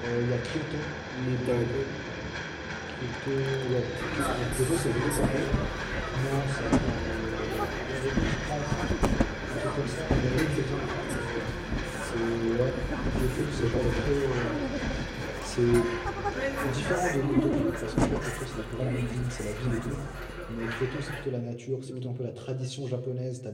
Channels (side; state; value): both; identical; correlation 1.00